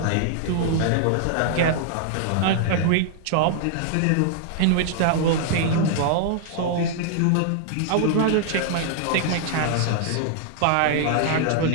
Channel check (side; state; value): both; different; correlation -0.01